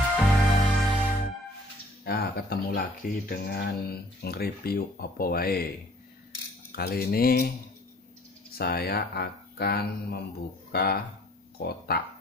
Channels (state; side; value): normal; both; correlation 0.55